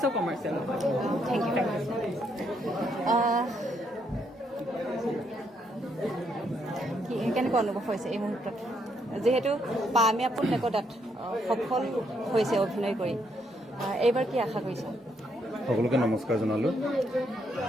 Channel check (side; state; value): both; normal; correlation 0.75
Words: কমাৰ্চিয়েল নহয়। Thank you. কেনেকুৱা অনুভৱ হৈছে এই মুহূৰ্তত, যিহেতু পামে আপোন নেকটাত সফল হৈছে অভিনয় কৰি, এইবাৰ কি আশা কৰিছা? সকলোকে নমস্কাৰ জনালোঁ।